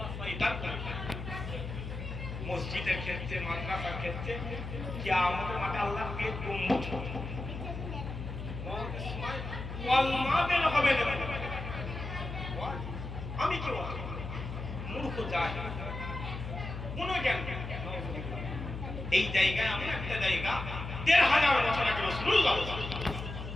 শয়তান মসজিদের ক্ষেত্রে, মাদ্রাসার ক্ষেত্রে, কিয়ামতের মাঠে আল্লাহর পেট গম্বুজ কলমা বের হবে না। আমি কি মূর্খ যাই কোন জ্ঞান। এই জায়গায় এমন একটা জায়গা ১,৫০০ বছর আগে রাসূলুল্লাহ,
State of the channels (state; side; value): noise; left; hum, 7 dB below the sound